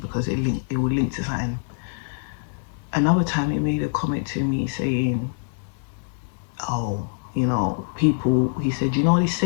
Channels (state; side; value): silent; right; digital silence